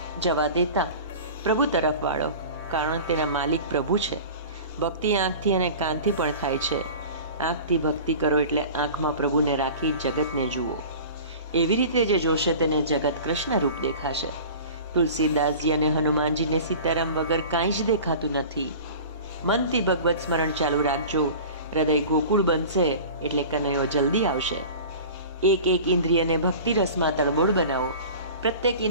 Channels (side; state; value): both; inverted; correlation -0.38